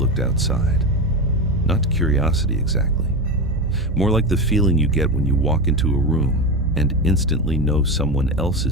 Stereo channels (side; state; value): both; normal; correlation 0.19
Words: outside. Not curiosity exactly. More like the feeling you get when you walk into a room and instantly know someone else